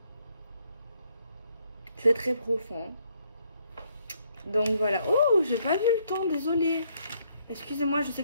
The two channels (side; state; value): both; inverted; correlation -0.71